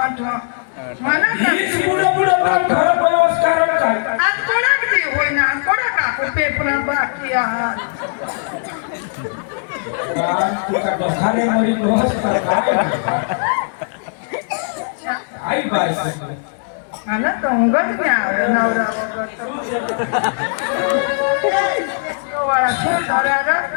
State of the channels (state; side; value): silent; right; 65 dB below the other